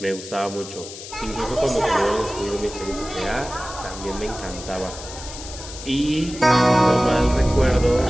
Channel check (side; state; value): left; noise; hiss, 13 dB below the sound